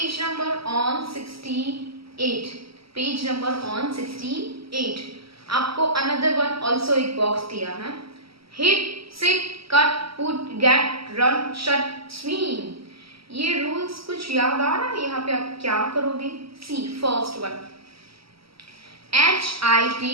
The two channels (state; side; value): late; left; 0.75 ms